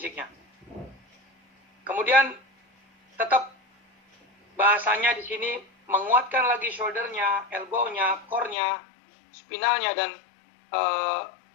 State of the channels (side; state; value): right; drops out; at 8.6 s